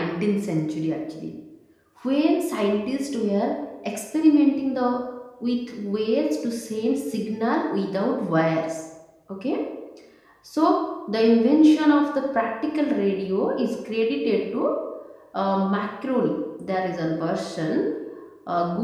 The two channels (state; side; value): identical; both; correlation 1.00